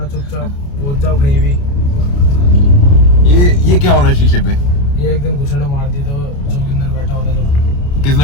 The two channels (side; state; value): right; late; 29 ms